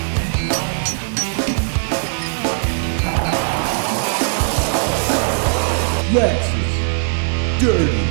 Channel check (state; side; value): silent; left; digital silence